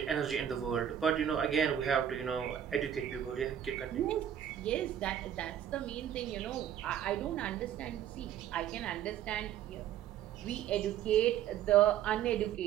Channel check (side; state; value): left; quieter; 10.1 dB